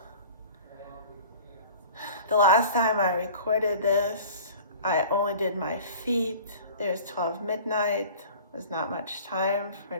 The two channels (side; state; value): both; inverted; correlation -0.43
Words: The last time I recorded this, I only did my feet. It was 12 midnight. There's not much time for